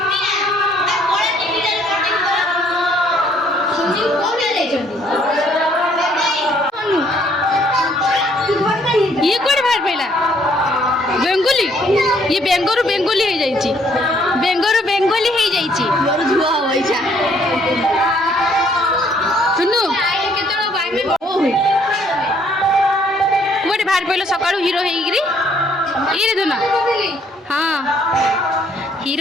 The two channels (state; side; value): normal; both; correlation 0.65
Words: ये कौन बाहर पड़ा बेंगोली ये बेंगोरु बेंगोली हो जाइए बेंगोरु बेंगोली हो जाइए सुनु बाहर पहले सका हिरो ये दुना हाँ